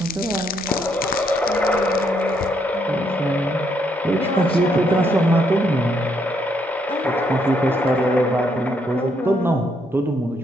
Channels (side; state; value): both; normal; correlation 0.74